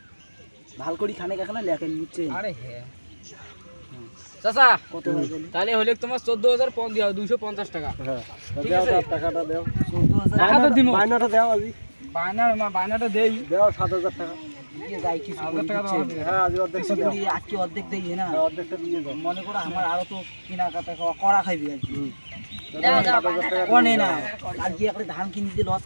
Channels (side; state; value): both; inverted; correlation -1.00